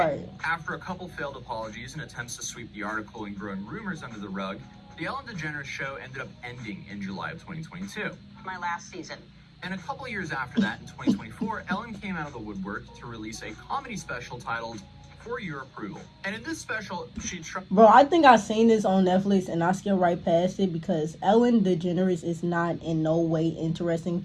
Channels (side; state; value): both; identical; correlation 1.00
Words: After a couple failed apologies and attempts to sweep the article and growing rumors under the rug, the Ellen DeGeneres show ended up ending in July of 2022. My last season. And a couple years after that, in 2024, Ellen came out of the woodwork to release a comedy special titled For Your Approval. And in this special, she Bro, I think I seen this on Netflix and I skipped right past it because Ellen DeGeneres is not in no way interesting